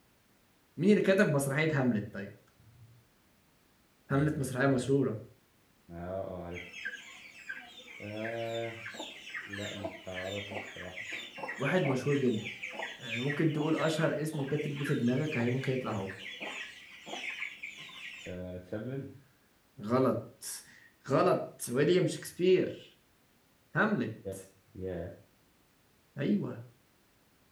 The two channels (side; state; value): both; identical; correlation 1.00